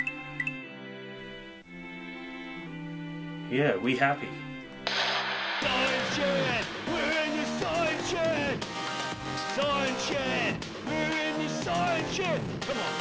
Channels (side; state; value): both; identical; correlation 1.00